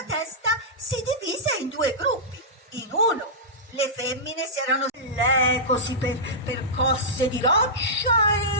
testa si divise in due gruppi. In uno le femmine si erano così percosse di roccia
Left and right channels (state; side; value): normal; both; correlation -0.14